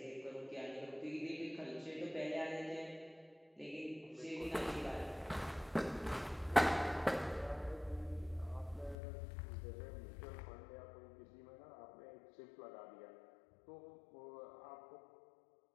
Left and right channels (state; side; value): drops out; right; at 9.0 s